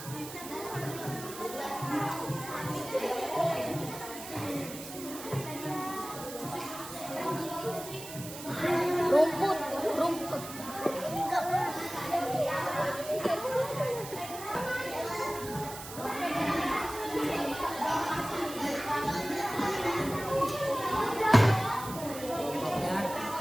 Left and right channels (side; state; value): right; noise; hiss, 12 dB below the sound